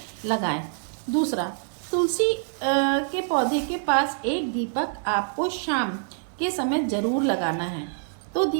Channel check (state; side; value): silent; left; 61 dB below the other